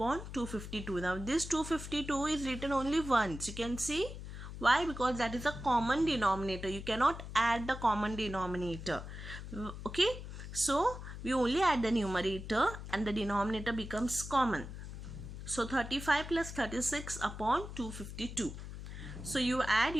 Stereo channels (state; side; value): noise; left; hum, 10 dB below the sound